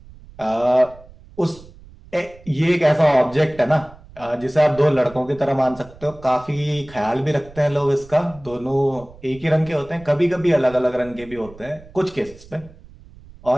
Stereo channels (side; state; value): right; noise; rumble, 21 dB below the sound